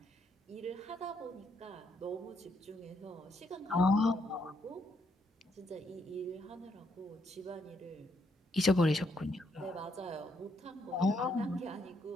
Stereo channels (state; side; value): normal; both; correlation 0.74